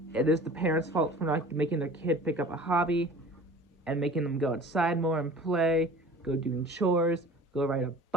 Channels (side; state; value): both; normal; correlation 0.43